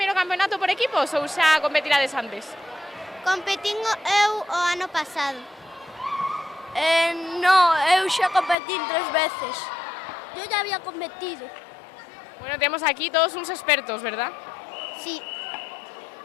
campeonato por equipos ou xa competirades antes? Competín eu o ano pasado. No, eu xa competín 3 veces. Yo ya había competido. Bueno, temos aquí todos uns expertos, verdad? Sí.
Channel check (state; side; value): drops out; right; at 8.6 s